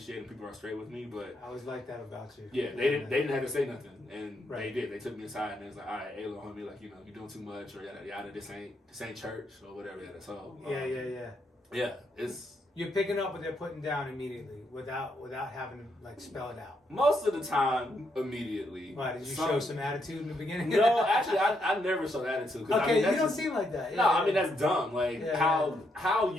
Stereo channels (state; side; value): normal; both; correlation 0.77